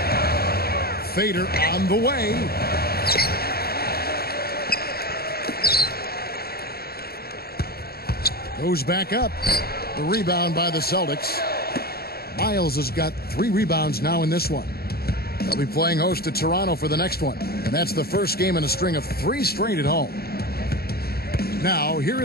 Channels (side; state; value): right; late; 0.45 ms